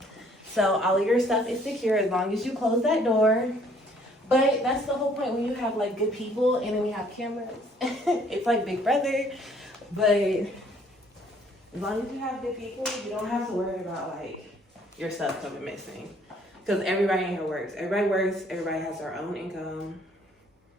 So all of your stuff is secure as long as you close that door. But that's the whole point when you have like good people and then we have cameras. It's like Big Brother. But as long as you have good people, you don't have to worry about like your stuff coming missing. Because everybody in here works. Everybody has their own income.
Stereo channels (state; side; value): normal; both; correlation 0.61